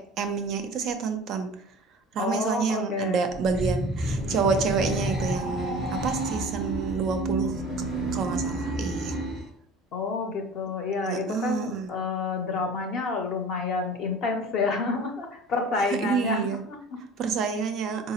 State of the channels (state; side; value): normal; both; correlation 0.41